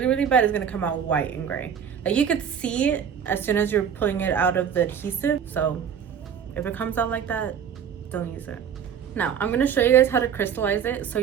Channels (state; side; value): quieter; left; 7.9 dB